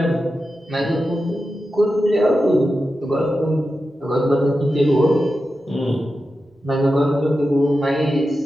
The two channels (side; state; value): both; normal; correlation 0.91